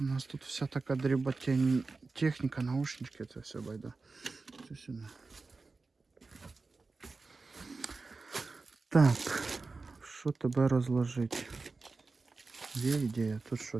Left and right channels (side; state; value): left; quieter; 3.9 dB